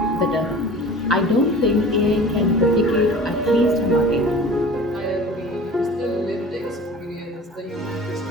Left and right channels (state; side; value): normal; both; correlation 0.41